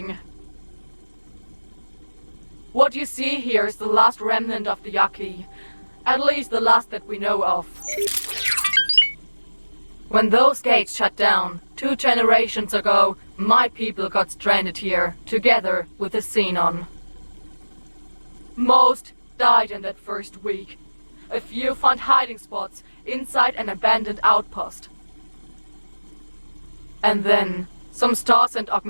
What you see here is the last remnant of the Yaki. At least the last that we know of. When those gates shut down, 2 generations ago, my people got stranded here, together with the Xenon. Most died in that first week. A few found hiding spots inside an abandoned outpost. And then, some stars and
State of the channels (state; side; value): inverted; both; correlation -1.00